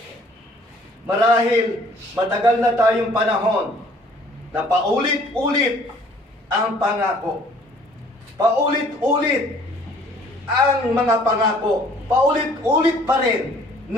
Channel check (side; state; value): both; normal; correlation 0.56